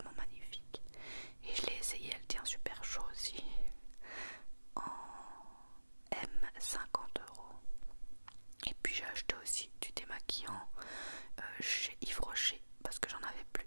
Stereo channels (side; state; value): both; inverted; correlation -1.00